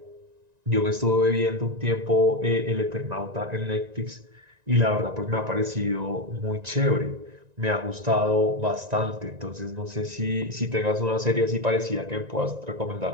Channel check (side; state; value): left; late; 1.9 ms